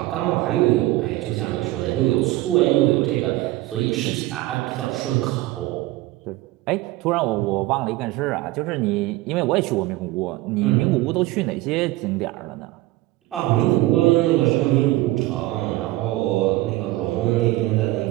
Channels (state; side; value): quieter; left; 17.9 dB